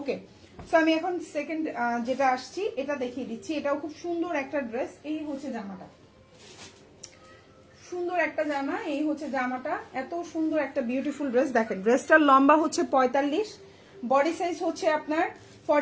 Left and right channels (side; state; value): both; identical; correlation 1.00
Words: সো আমি এখন সেকেন্ড যেটা আসছি এটা দেখিয়ে দিচ্ছি। এটাও খুব সুন্দর একটা ড্রেস। এই হচ্ছে জামাটা, সুন্দর একটা জামা। এই হচ্ছে জামাটা, এত সুন্দর একটা বিউটিফুল ড্রেস। দেখেন ড্রেসটার লম্বা হচ্ছে 45, বডি সাইজ হচ্ছে আপনার